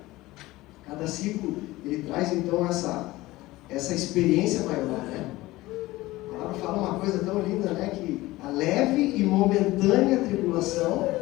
Cada ciclo, ele traz então essa experiência maior, né? A palavra fala uma coisa tão linda, né? Que a leve e momentânea tribulação,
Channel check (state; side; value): quieter; right; 18.7 dB